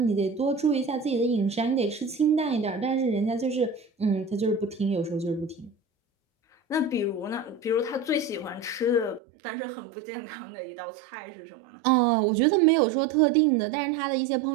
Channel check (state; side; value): drops out; left; at 9.2 s